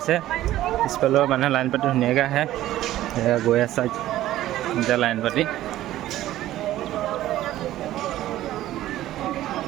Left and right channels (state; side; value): quieter; left; 14.3 dB